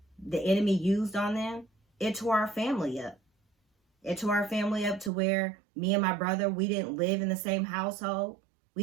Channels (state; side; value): drops out; left; at 5.1 s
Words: the enemy used on them, it tore our family up. It tore our family up to where me and my brother, we didn't live in the same household. We